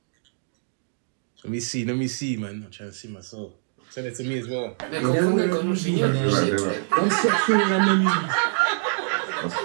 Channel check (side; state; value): left; silent; digital silence